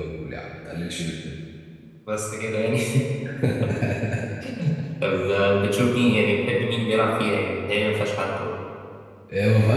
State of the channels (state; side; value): identical; both; correlation 1.00